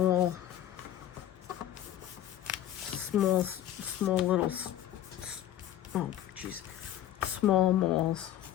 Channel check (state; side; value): quieter; right; 12.1 dB